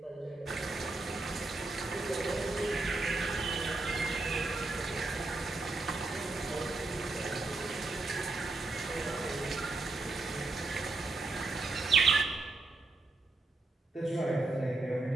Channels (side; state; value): left; quieter; 3.4 dB